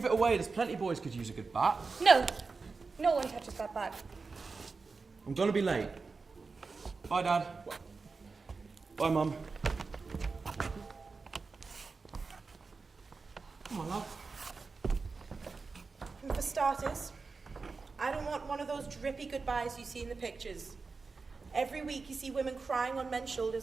it away. There's plenty of boys could use a good bat. No. No one touches that bat. I'm going to be late. Bye, Dad. Bye, Mum. Come on, love. And for starters, I don't want one of those drippy goodbyes you see in the pictures. Every week you see women crying on men's shoulders,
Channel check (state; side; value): quieter; left; 4.4 dB